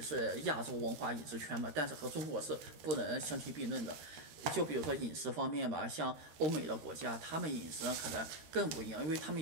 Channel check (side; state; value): left; late; 13 ms